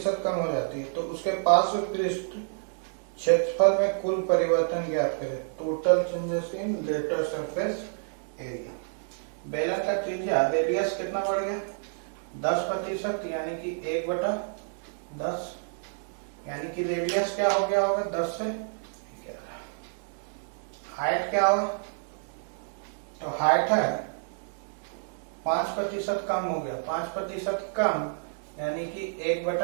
कम हो जाती है तो उसके पार्श्व पृष्ठ क्षेत्रफल में कुल परिवर्तन ज्ञात करें। Total changes in lateral surface area. बेलन का त्रिज्या रेडियस कितना बढ़ गया? 10% यानी कि 1/10 यानी कि रेडियस क्या हो गया होगा? 10 से 11। हाइट क्या होगा? तो हाइट है 5% कम हो गया। 5% कम यानी कि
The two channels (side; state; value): left; silent; digital silence